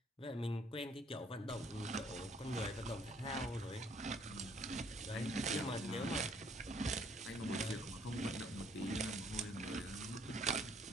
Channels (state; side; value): normal; both; correlation 0.63